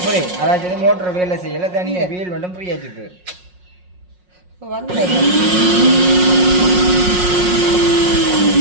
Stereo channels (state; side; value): late; left; 5.5 ms